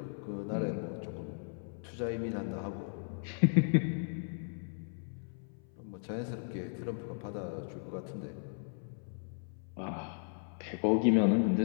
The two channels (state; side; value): silent; right; 54 dB below the other